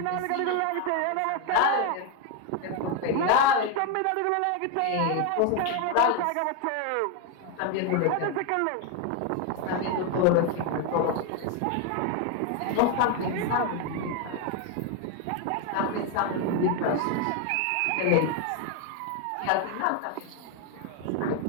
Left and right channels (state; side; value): different; both; correlation 0.01